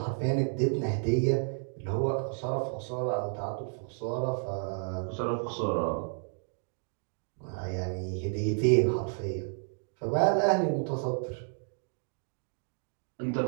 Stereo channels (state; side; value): silent; left; 57 dB below the other